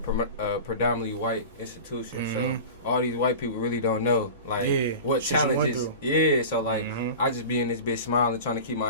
predominantly white institution, so all these white people really don't know, like, what challenges. Yeah, so, like, I just be in this bitch smiling, trying to keep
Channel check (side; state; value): both; inverted; correlation -0.34